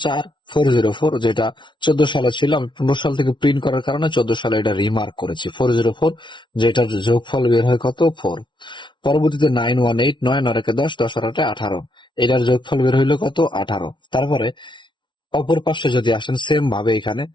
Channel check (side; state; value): right; late; 0.23 ms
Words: 4404, যেটা 14 সালে ছিল। আমি 15 সাল থেকে প্রিন্ট করার কারণে 14 সালে এটা রিমার্ক করেছি 404, যেটার যোগফল বের হয় কত? 4। পরবর্তীতে 9189, 9 10, 10 8 18, এটার যোগফল বের হইলো কত? 18। তারপরে অপর পাশে যদি আসেন, সেম ভাবে এখানে